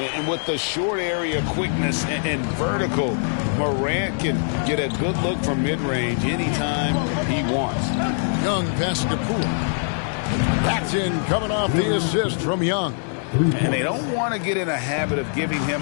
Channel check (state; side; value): silent; right; digital silence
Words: And with the short area quickness and vertical, Morant can get a good look from mid-range anytime he wants. Young passes to Poole. That's in, coming off the assist from Young. And they don't want to get in a habit of giving him